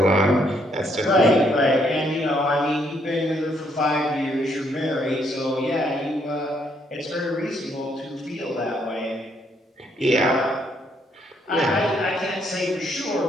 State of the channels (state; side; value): normal; both; correlation 0.71